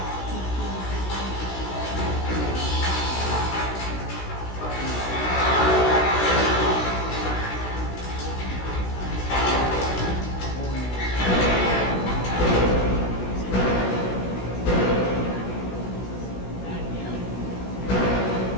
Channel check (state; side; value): late; right; 16 ms